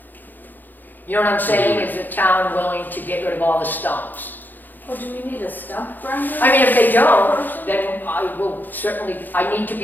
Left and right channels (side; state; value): right; late; 0.087 ms